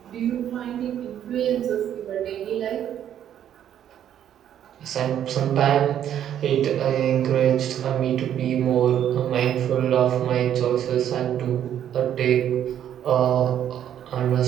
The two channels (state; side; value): quieter; left; 10.2 dB